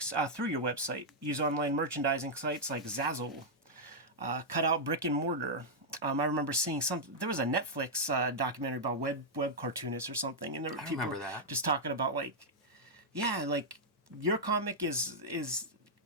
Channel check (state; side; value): normal; both; correlation -0.06